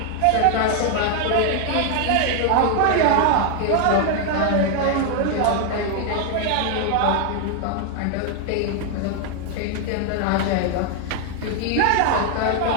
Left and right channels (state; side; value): different; both; correlation 0.00